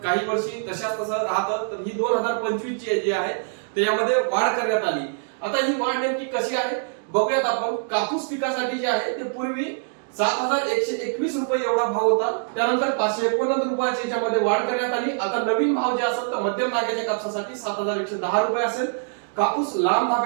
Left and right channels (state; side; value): silent; left; digital silence